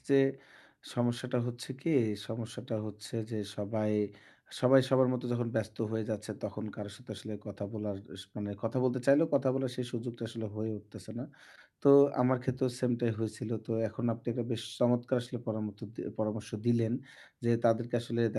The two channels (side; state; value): both; identical; correlation 1.00